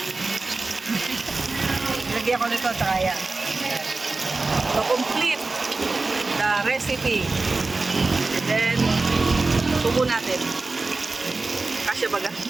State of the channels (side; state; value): left; quieter; 3.6 dB